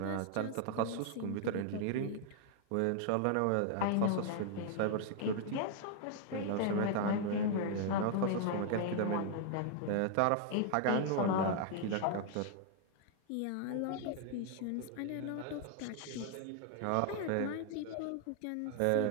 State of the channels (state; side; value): different; both; correlation 0.00